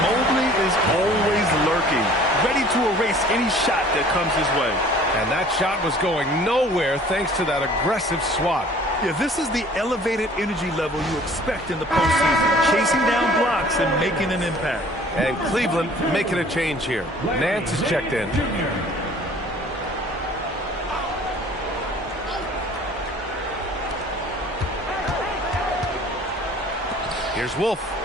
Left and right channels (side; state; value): both; normal; correlation 0.51